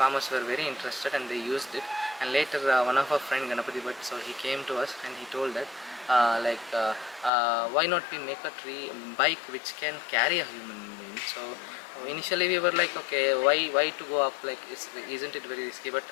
were very interested and they used it. And later one of our friend Ganapati Bhatt, so he came to us and he told that why not we make a tree bike which can carry a human being. So initially we were like okay, why to go up, like isn't it very risky. But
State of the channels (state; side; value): drops out; right; at 7.3 s